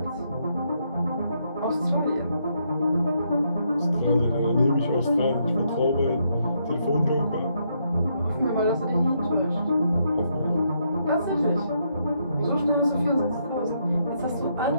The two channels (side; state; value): both; inverted; correlation -0.76